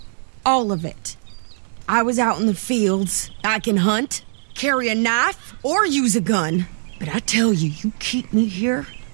All of it. I was out in the fields. I can hunt, carry a knife, or use a gun. But I tell you, you keep me here,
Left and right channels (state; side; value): silent; left; digital silence